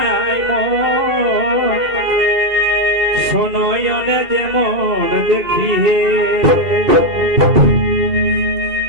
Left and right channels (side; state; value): left; late; 2.7 ms